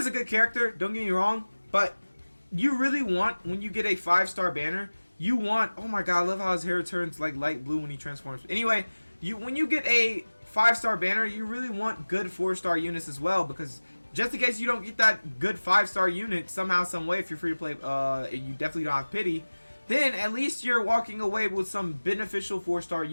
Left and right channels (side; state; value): both; inverted; correlation -1.00